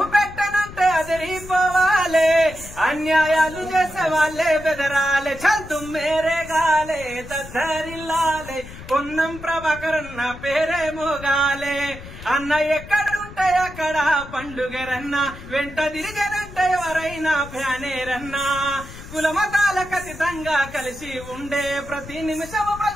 పెట్టనంటే అదిరిపోవాలే అన్యాయాలు చేసే వాళ్ళే బెదరాలే చల్ తుమ్మేరే గాలే దద్దరిల్లాలే పొన్నం ప్రభాకరన్న పేరే మోగాలే అన్న ఎక్కడుంటే అక్కడ పండుగరన్న వెంట తిరిగనంటే ఎవరైనా ఫ్యానేరన్నా కులమతాలకు అతీతంగా కలిసి ఉండే ప్రతి నిమిషము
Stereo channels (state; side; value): noise; left; rumble, 15 dB below the sound